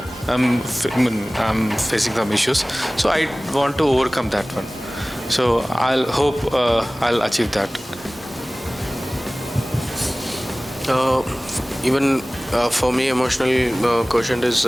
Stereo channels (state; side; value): normal; both; correlation 0.98